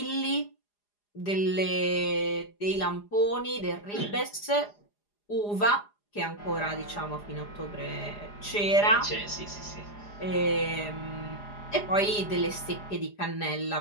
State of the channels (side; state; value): right; late; 4.9 ms